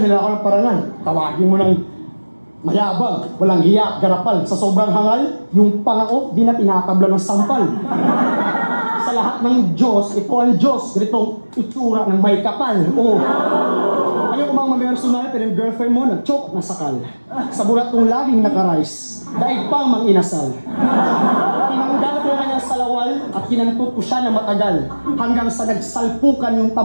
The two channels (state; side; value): inverted; both; correlation -1.00